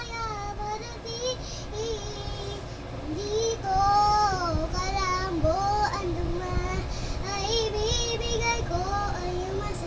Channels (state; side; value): identical; both; correlation 1.00